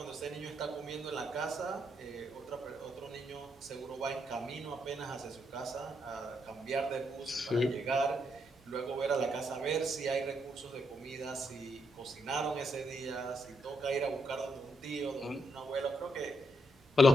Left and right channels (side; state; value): both; normal; correlation 0.78